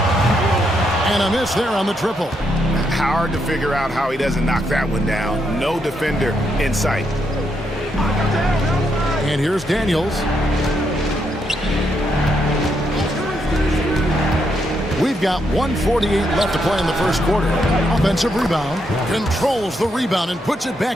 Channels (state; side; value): normal; both; correlation 0.78